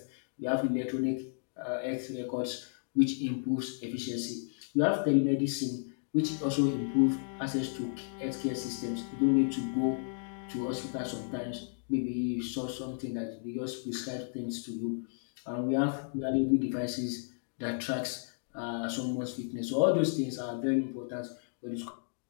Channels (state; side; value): silent; right; digital silence